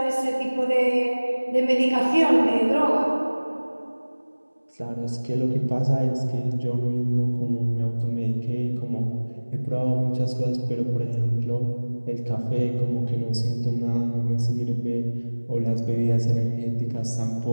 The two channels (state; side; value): inverted; both; correlation -1.00